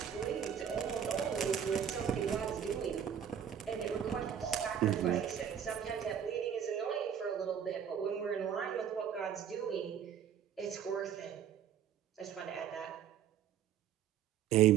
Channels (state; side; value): quieter; left; 8.8 dB